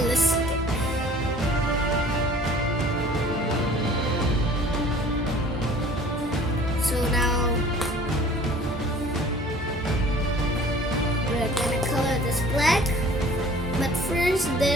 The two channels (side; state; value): both; normal; correlation 0.49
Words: So now we're gonna color this black, but first